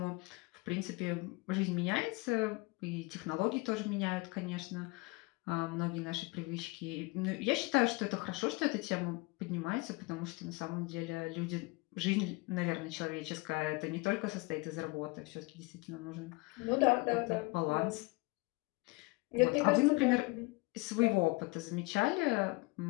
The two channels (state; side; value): quieter; right; 25.5 dB